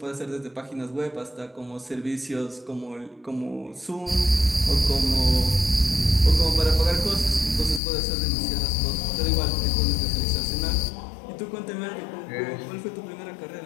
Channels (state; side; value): drops out; right; at 7.8 s